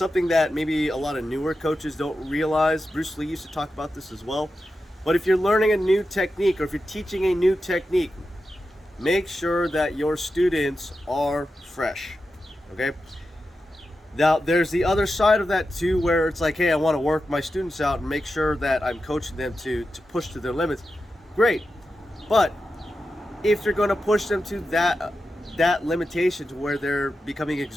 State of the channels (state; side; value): normal; both; correlation 0.90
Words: that maybe a lot of newer coaches don't realize. Bruce Lee used to talk about this as well. But if you're learning a new technique or if you're teaching a new technique, make sure that your students are fresh, okay? Now, there's the other side of that too, where it's like, hey, I want to work my students out and make sure that I'm coaching them to push to their limits. Great. But if you're going to push them to that limitation to where they're becoming